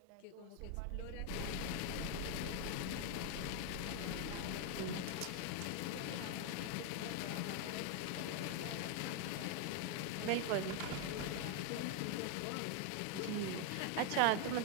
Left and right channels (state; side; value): different; both; correlation 0.01